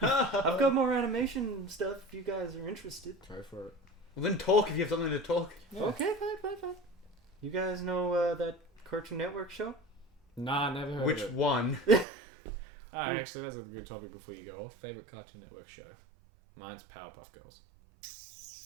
I've got more animation stuff if you guys are interested. Go for it. Well, then talk if you have something to talk. Yeah. Okay, fine. You guys know that Cartoon Network show? Nah, never heard Which of it. one? Oh, actually, that's a good topic before you go off. Favorite Cartoon Network show? Mine's Powerpuff Girls.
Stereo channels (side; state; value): left; drops out; at 12.1 s